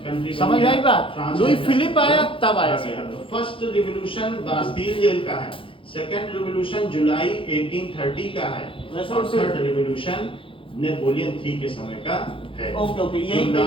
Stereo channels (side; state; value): right; late; 0.25 ms